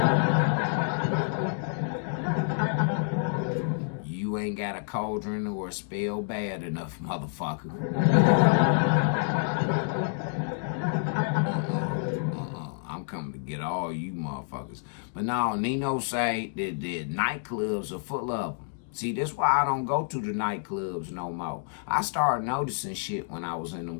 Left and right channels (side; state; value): right; silent; digital silence